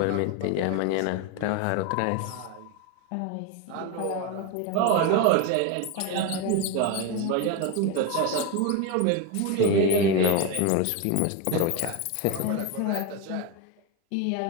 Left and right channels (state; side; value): different; both; correlation 0.03